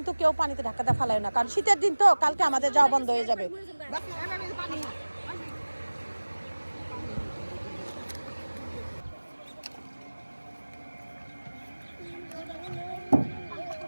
কেউ পানিতে ধাক্কা দিয়ে ফেলায় না, কারণ শীতের দিন তো, কালকে আমাদের যাওয়া বন্ধ হয়ে যাবে।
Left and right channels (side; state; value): both; inverted; correlation -1.00